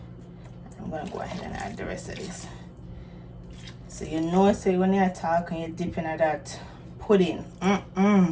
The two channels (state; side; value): identical; both; correlation 1.00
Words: gonna go ahead and add the rest of this. So you know, say when you're talking, you're dipping at that pudding.